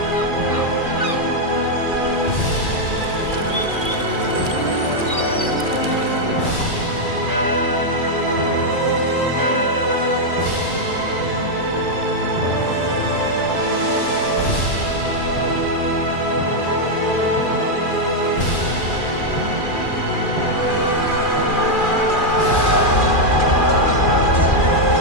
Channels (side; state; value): right; late; 2.4 ms